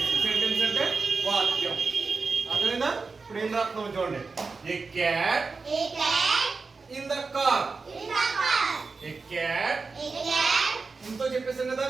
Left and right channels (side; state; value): left; quieter; 4.4 dB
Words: సెంటెన్స్ అంటే వాక్యం. అదేనా? ఇప్పుడు ఏం రాస్తున్నాం చూడండి. A cat in the car. A cat ఇంతో చెప్పేసాం కదా,